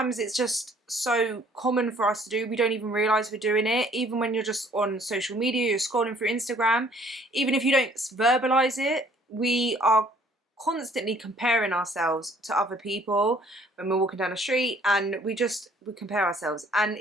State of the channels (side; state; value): both; normal; correlation 0.59